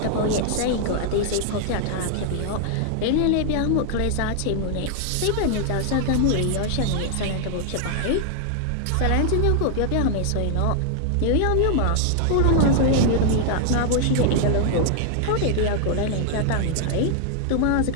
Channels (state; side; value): different; both; correlation 0.00